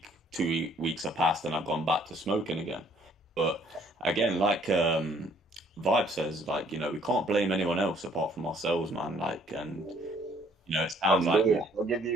2 weeks have passed, and I've gone back to smoking again. But again, like Vibe says, like, we can't blame anyone else apart from ourselves, man. Like, and it sounds like I'll give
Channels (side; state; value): both; normal; correlation 0.61